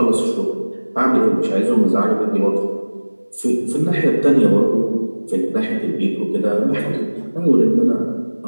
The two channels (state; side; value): inverted; both; correlation -1.00